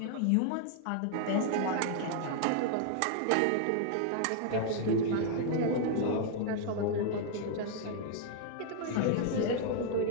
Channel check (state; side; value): different; both; correlation 0.00